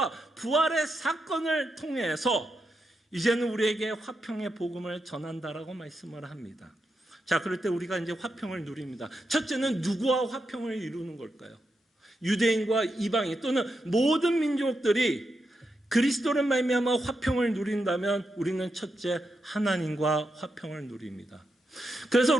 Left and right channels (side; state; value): both; normal; correlation 0.85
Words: 부활의 사건을 통해서 이제는 우리에게 화평의 복음을 전한다라고 말씀을 합니다. 자, 그럴 때 우리가 이제 화평을 누립니다. 첫째는 누구와 화평을 이루는 걸까요? 유대인과 이방인 또는 모든 민족들이 그리스도를 말미암아 화평을 누린다면 우리는 첫째 하나님과 화평을 누립니다. 그래서